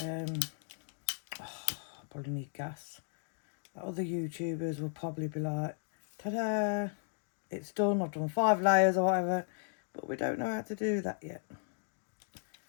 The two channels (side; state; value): right; silent; 54 dB below the other